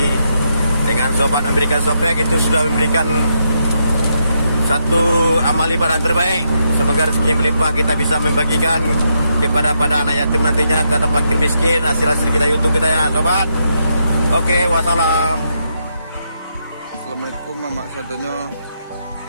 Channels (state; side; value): inverted; both; correlation -0.80